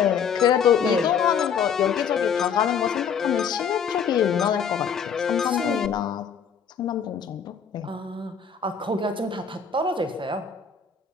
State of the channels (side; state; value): right; quieter; 7.0 dB